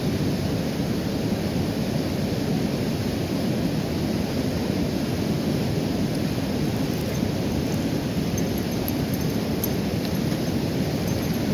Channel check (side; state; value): both; identical; correlation 1.00